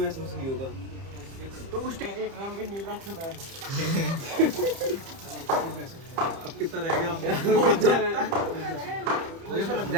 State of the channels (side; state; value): left; late; 30 ms